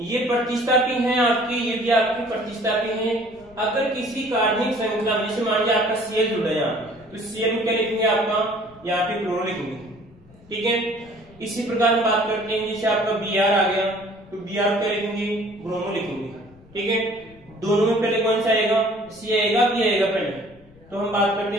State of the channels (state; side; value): noise; left; rumble, 25 dB below the sound